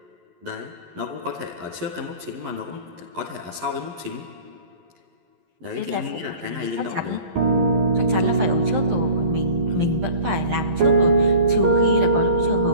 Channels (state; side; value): late; left; 11 ms